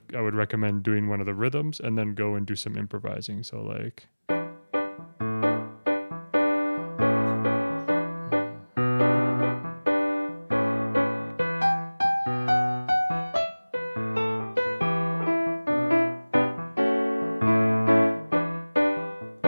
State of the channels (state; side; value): inverted; both; correlation -1.00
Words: I would recommend doing one of the rhythms and then go and do some improvising. So like,